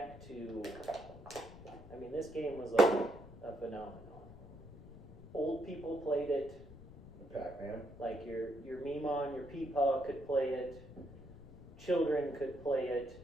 to, I mean, this game was like a phenomenon. Old people played it. Pac-Man. Like your Meemon, your Peepaw could play it. Children could play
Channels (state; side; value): noise; left; rumble, 17 dB below the sound